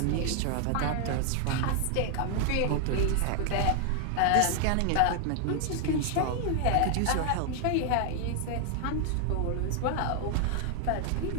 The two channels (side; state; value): both; different; correlation 0.00